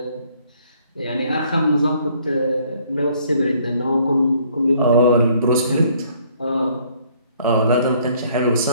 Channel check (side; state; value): both; inverted; correlation -0.62